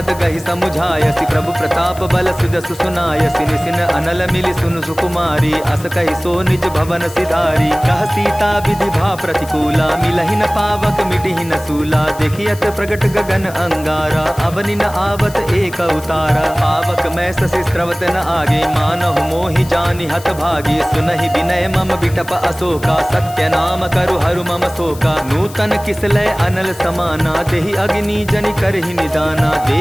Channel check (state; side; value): noise; left; hiss, 18 dB below the sound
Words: गहि समुझायसि प्रभु प्रताप बल सुजसु सुनायसि। निसिन अनल मिलि सुनु सुकुमारी अस कहि सो निज भवन सिधारी। कह सीता विधि भा प्रतिकूला मिलहि न पावक मिटिहि न सूला। देखियत प्रगट गगन अंगारा अवनि न आवत एक उतारा। पावक मैं ससि स्रवत न आगे मानहु मोहि जानि हत भागी। सुनहि विनय मम बिटप अशोका सत्य नाम करु हरु मम शोका। नूतन किसलय अनल समाना देहि अग्नि जनि करहि निदाना।